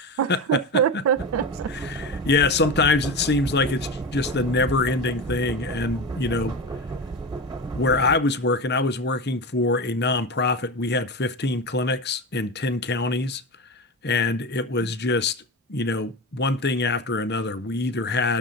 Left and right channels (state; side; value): normal; both; correlation 0.23